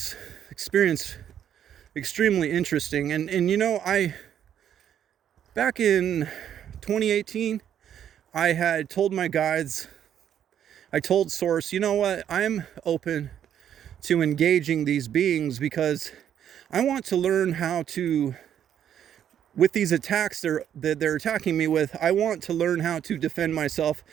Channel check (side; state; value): left; quieter; 9.7 dB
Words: experience extremely interesting. And you know, back in 2018, I had told my guides, I told Source, you know what, I'm open to engaging these beings because I want to learn how to, with these attacks that they're attacking me with, I want to learn how to defend myself.